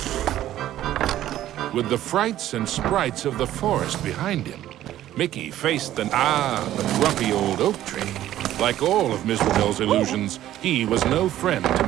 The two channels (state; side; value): quieter; left; 13.0 dB